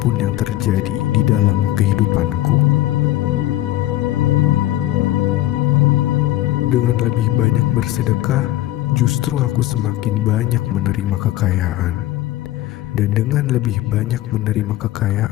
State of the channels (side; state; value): right; quieter; 15.2 dB